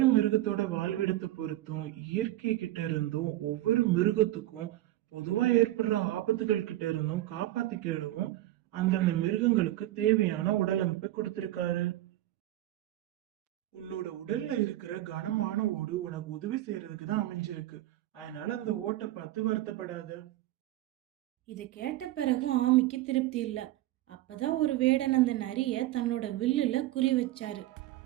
மிருகத்தோட வாழ்விடத்தை பொறுத்தும் இயற்கை கிட்ட இருந்தும் ஒவ்வொரு மிருகத்துக்கும் பொதுவா ஏற்படுற ஆபத்துகள் கிட்ட இருந்தும் காப்பாத்திக்கிடவும் அந்தந்த மிருகங்களுக்கு தேவையான உடல் அமைப்பை கொடுத்திருக்காரு. உன்னோட உடல்ல இருக்கிற கனமான ஓடு உனக்கு உதவி செய்யறதுக்கு தான் அமைஞ்சிருக்கு. அதனால அந்த ஓட்டை பார்த்து வருத்தப்படாத. இதை கேட்ட பிறகும் ஆமைக்கு திருப்தி இல்லை. அப்பதான் ஒரு வேடன் அந்த நரிய தன்னோட வில்லுல குறி வச்சாரு.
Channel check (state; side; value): quieter; left; 15.4 dB